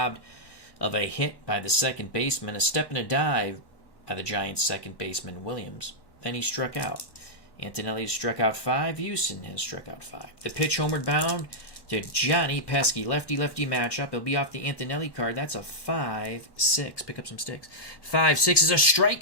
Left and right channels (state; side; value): late; right; 1.1 ms